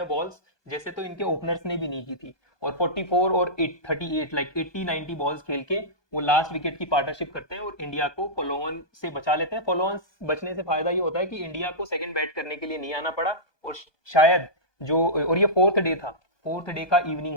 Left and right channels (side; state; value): right; late; 1.2 ms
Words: बॉल्स जैसे तो इनके ओपनर्स ने भी नहीं की थी। और 44 और 38 लाइक 80-90 बॉल्स खेल के वो लास्ट विकेट की पार्टनरशिप करते हैं और इंडिया को फॉलो ऑन से बचा लेते हैं। फॉलो ऑन बचने से फायदा ये होता है कि इंडिया को सेकंड बैट करने के लिए नहीं आना पड़ा। और शायद जो, और ये फोर्थ डे था, फोर्थ डे का